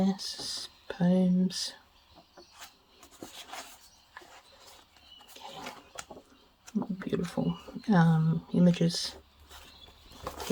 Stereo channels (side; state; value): both; identical; correlation 1.00